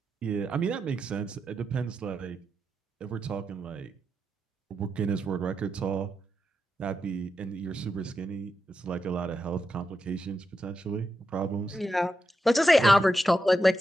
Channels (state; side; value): normal; both; correlation 0.87